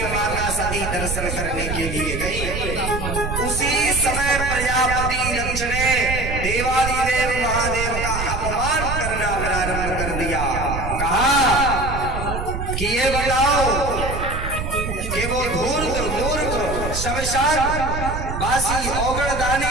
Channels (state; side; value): noise; right; rumble, 4 dB below the sound